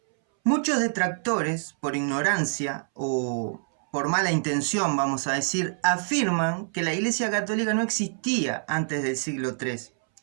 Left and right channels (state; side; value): silent; left; 61 dB below the other